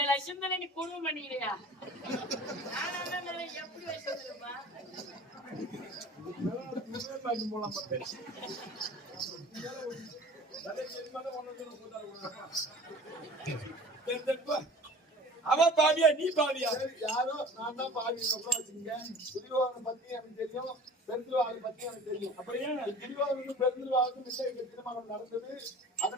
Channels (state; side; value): normal; both; correlation 0.44